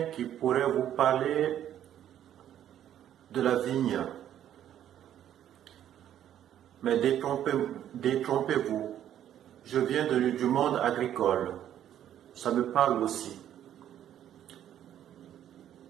qui pourrait vous parler de la vigne. Mais détrompez-vous. Je viens du monde agricole. Ça me parle aussi.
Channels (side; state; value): left; quieter; 10.9 dB